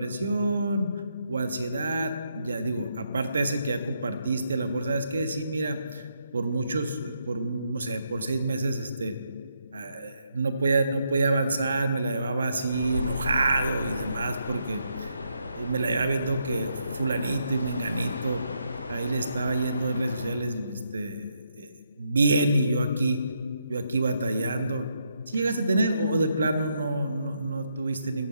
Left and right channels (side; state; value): both; inverted; correlation -0.78